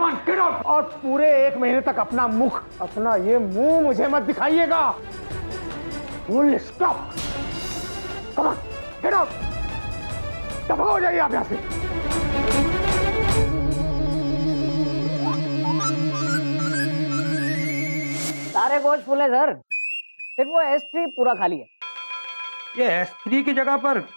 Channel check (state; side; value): inverted; both; correlation -1.00